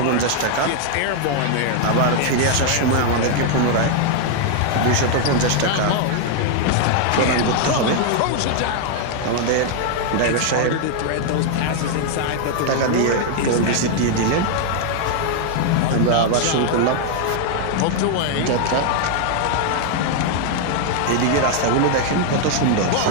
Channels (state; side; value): different; both; correlation 0.00